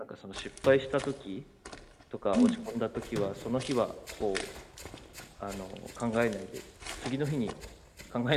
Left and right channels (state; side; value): identical; both; correlation 1.00